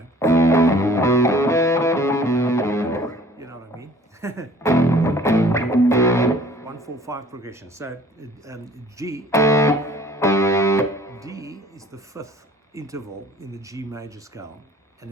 what I mean. 1, 4, 5 progression. So G, D is the fifth interval in the G major scale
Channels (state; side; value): normal; both; correlation 0.52